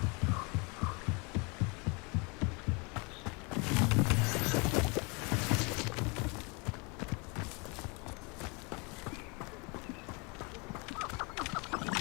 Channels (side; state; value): right; quieter; 30.5 dB